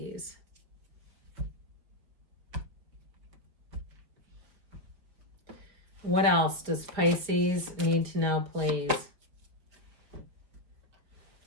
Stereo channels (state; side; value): late; left; 5.1 ms